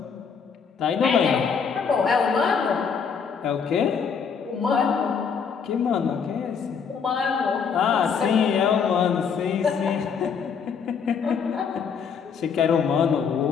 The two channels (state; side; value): quieter; right; 6.4 dB